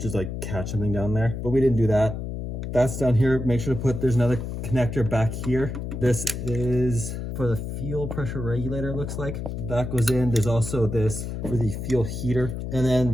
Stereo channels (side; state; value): left; noise; hum, 5 dB below the sound